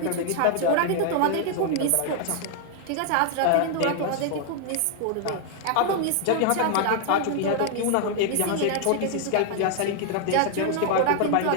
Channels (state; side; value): different; both; correlation 0.00